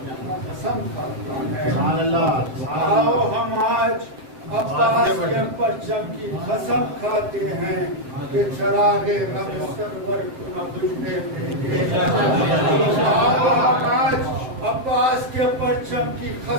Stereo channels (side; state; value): left; late; 7.7 ms